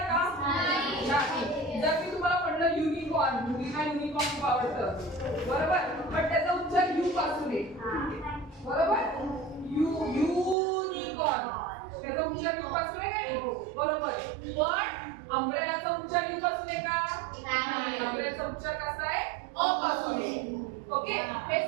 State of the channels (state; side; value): drops out; left; at 10.6 s